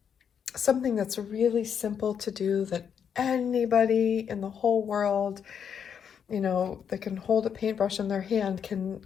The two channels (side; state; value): right; quieter; 7.7 dB